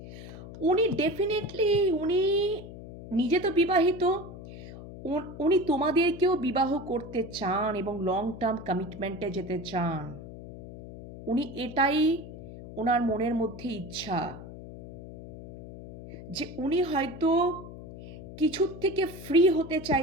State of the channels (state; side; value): noise; left; hum, 13 dB below the sound